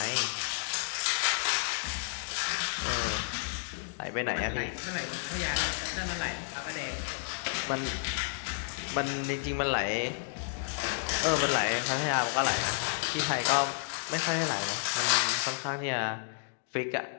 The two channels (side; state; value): right; silent; digital silence